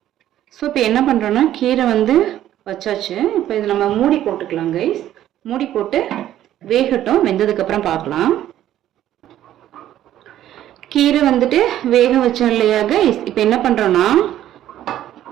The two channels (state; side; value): quieter; left; 12.3 dB